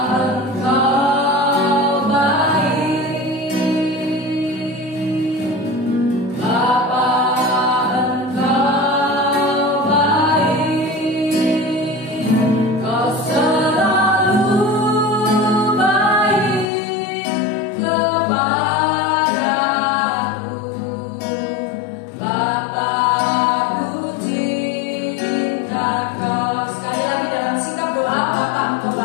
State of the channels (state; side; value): drops out; right; at 16.7 s